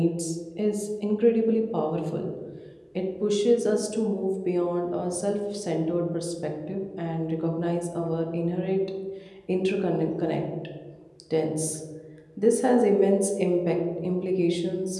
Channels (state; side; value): identical; both; correlation 1.00